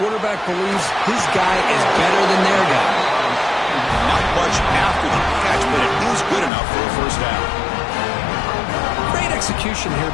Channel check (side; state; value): right; drops out; at 6.5 s